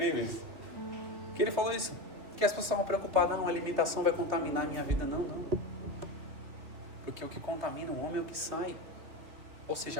que ele falou isso, que as pessoas estavam preocupadas: não, a alimentação vai contaminar a minha vida. Não. Porque o que contamina o homem é o que sai. Ou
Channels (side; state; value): left; late; 3.3 ms